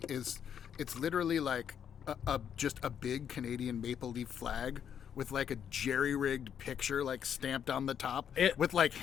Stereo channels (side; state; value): right; quieter; 8.5 dB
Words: it's literally like just a big Canadian maple leaf flag with like a jerry-rigged picture like stamped on the top with like